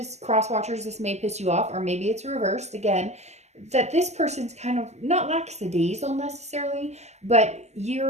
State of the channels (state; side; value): late; left; 0.33 ms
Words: cross watchers, this may piss you off, or maybe it's reversed again, that this person's kind of not lackadaisical necessarily, but